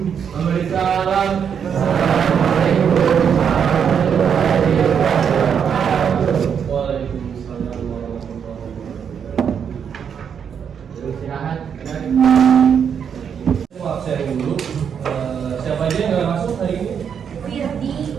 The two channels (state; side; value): quieter; left; 7.5 dB